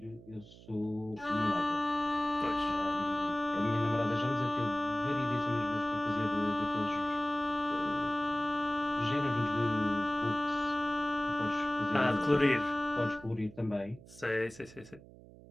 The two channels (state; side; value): noise; right; hum, 20 dB below the sound